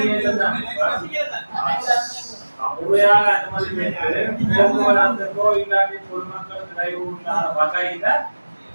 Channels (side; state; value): both; inverted; correlation -1.00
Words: முறையாக அனுமதி போக்குவரத்துக்கோ இல்லாட்டி பொதுமக்களுக்கு கைகூடாத வகையில